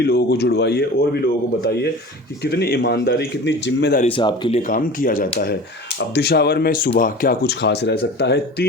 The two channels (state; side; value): normal; both; correlation 0.37